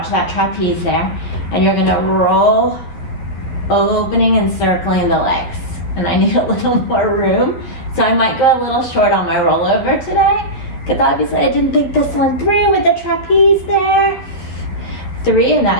that trapeze there. And you're gonna roll, opening and circling the legs. And I need a little more room, so I might go a little short on my rollover today, because obviously I didn't think this one through with the trapeze there. 3 in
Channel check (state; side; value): late; right; 12 ms